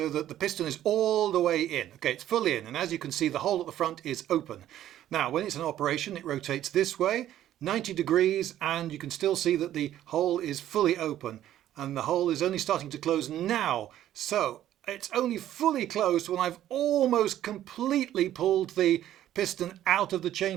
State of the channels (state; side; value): quieter; left; 12.2 dB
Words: that the piston is all the way in. Okay, it's fully in, and as you can see the hole at the front is open. Now when it's in operation it rotates this way, 90 degrees, and you can still see that the hole is fully open and the hole is only starting to close now. So it's only fully closed when I've almost completely pulled the piston out of the